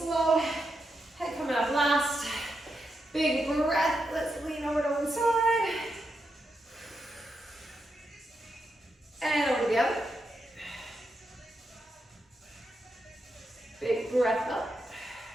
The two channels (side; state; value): both; normal; correlation 0.85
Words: Head coming up last. Big breath. Let's lean over to one side. And over to the other. Big breath up.